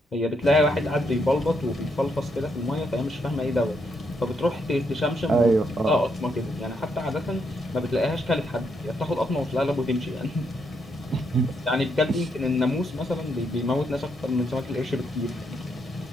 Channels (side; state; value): both; normal; correlation 0.77